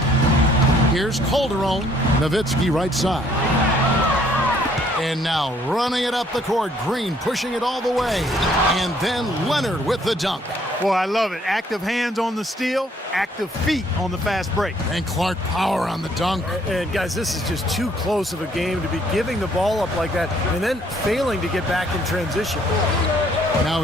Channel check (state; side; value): normal; both; correlation 0.64